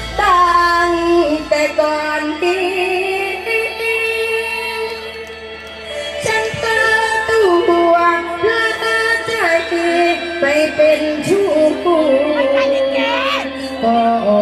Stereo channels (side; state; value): both; identical; correlation 1.00